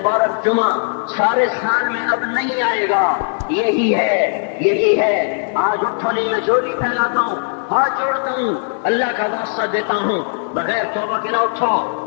جمعہ سارے سال میں اب نہیں آئے گا۔ یہی ہے آج اٹھنے میں جولی پھیلاتا ہوں، ہاتھ جوڑتا ہوں، اللہ کا واسطہ دیتا ہوں، بغیر توبہ کے نہ اٹھو،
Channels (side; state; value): right; silent; 64 dB below the other